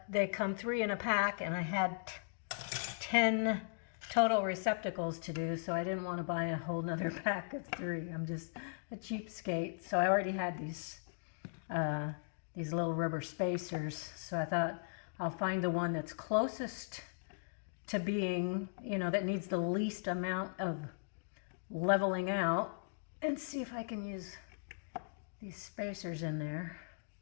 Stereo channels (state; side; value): silent; right; digital silence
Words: they come 3 in a pack, and I had 10 total receptacles to do, so I didn't want to buy a whole nother pack of 3. I'm just a cheapskate. So I already had these little rubber spacers, so I thought I'll find the one that's closest to being, you know, that needs the least amount of leveling out, and see if I can use these spacers in there.